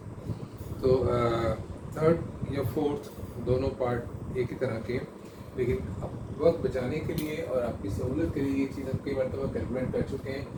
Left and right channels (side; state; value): both; identical; correlation 1.00